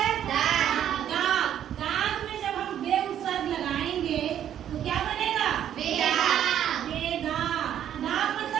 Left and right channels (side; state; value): left; quieter; 10.3 dB